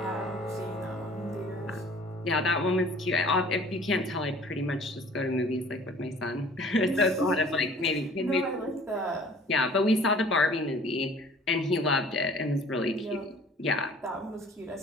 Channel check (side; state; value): both; normal; correlation 0.50